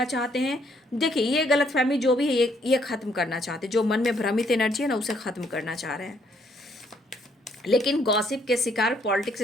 चाहते हैं। देखिए, ये गलतफहमी जो भी है, ये ख़त्म करना चाहते हैं। जो मन में भ्रमित एनर्जी है ना, उसे ख़त्म करना चाह रहे हैं। लेकिन गॉसिप के शिकार, पॉलिटिक्स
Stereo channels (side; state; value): both; normal; correlation 0.68